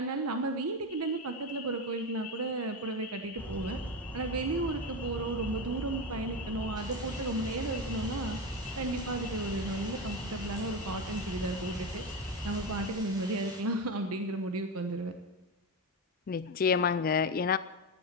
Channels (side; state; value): both; normal; correlation 0.16